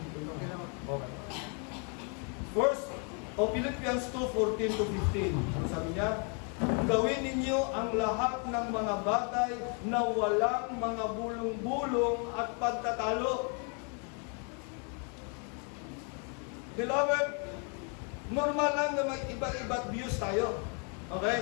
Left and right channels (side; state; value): right; quieter; 38.7 dB